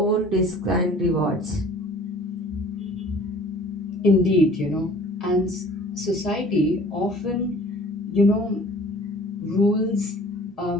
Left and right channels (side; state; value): both; normal; correlation 0.49